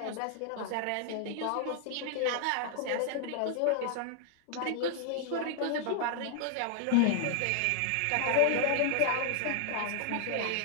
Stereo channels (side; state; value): both; different; correlation 0.00